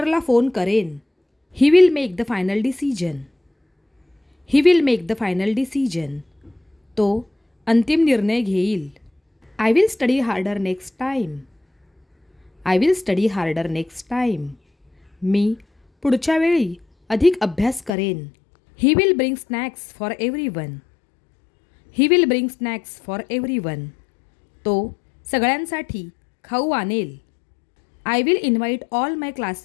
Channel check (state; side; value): drops out; right; at 17.9 s